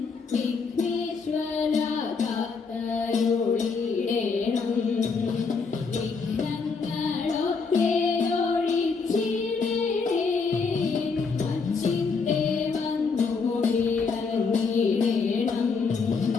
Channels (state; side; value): quieter; right; 4.9 dB